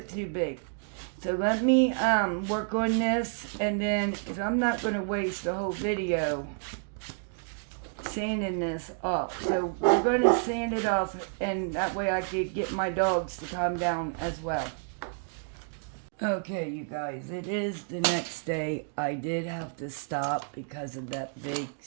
too big. So let me work on this, and then, because I'm not going to waste the whole video sanding this off. So we're going to sand it off, and that way I could get my dogs to calm down as well. Okay, you guys, it is the next day. I did have to stop because of that big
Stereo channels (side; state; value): left; silent; 58 dB below the other